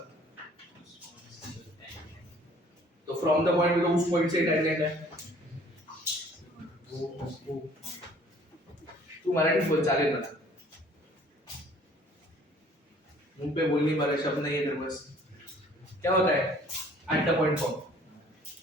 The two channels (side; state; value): both; normal; correlation 0.55